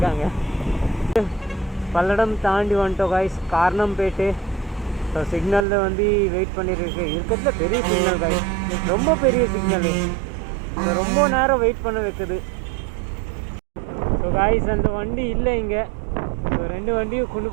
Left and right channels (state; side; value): drops out; left; at 5.7 s